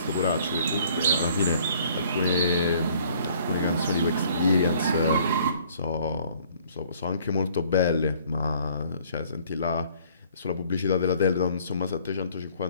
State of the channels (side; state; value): both; inverted; correlation -0.58